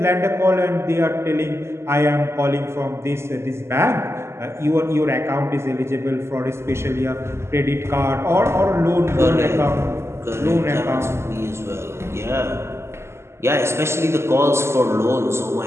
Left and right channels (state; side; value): late; left; 0.13 ms